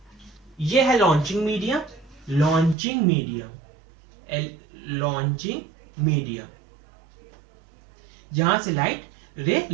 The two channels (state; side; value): drops out; left; at 2.8 s